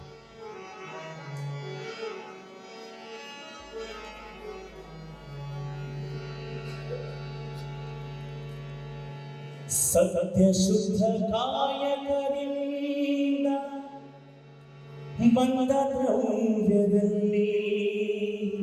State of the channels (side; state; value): both; identical; correlation 1.00